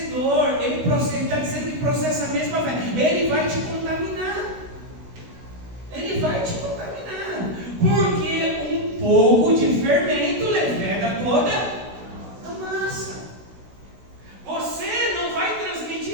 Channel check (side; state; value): left; late; 16 ms